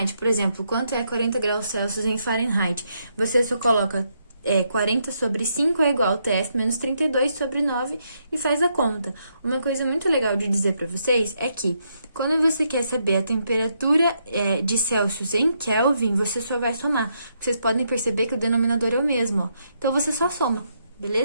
Por exemplo, quanto é 40 graus Celsius em Fahrenheit. Você só coloca 40 sobre 5 é igual a TF menos 32 sobre 9 e faz a conta. Uma coisa muito legal de dizer para vocês é que quando você quer saber a temperatura de Celsius em Kelvin, você só vai somar. Vocês podem perceber que o denominador é o mesmo, ó. Então, você só soma,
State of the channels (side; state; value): both; inverted; correlation -0.78